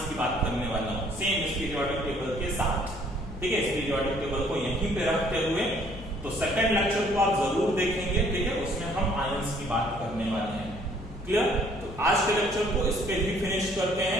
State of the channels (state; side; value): noise; left; hum, 13 dB below the sound